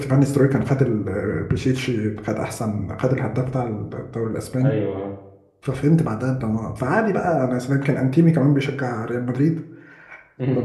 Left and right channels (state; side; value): identical; both; correlation 1.00